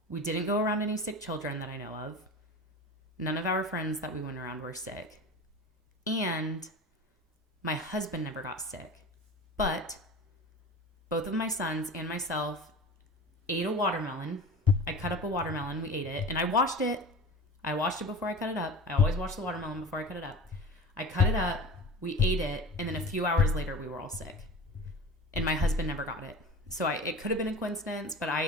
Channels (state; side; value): normal; both; correlation 0.35